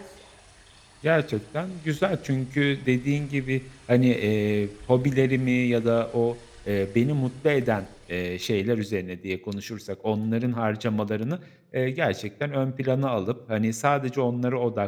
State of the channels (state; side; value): identical; both; correlation 1.00